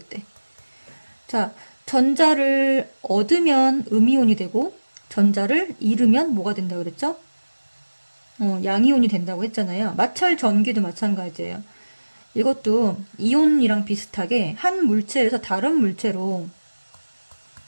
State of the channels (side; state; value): both; inverted; correlation -1.00